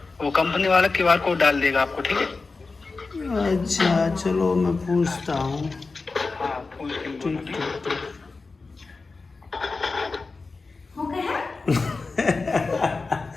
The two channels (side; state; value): right; quieter; 4.0 dB